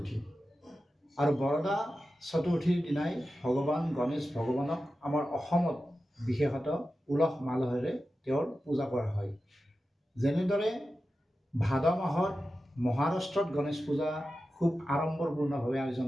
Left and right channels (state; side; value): normal; both; correlation 0.92